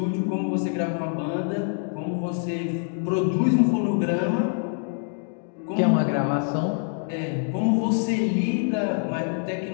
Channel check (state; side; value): silent; right; 59 dB below the other